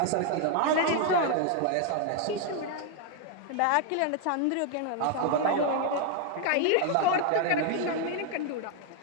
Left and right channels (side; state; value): both; different; correlation 0.00